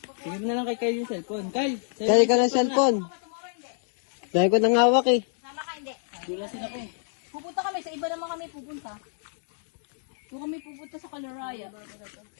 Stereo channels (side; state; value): right; silent; digital silence